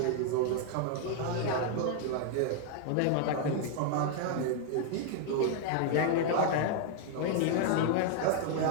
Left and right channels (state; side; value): different; both; correlation 0.00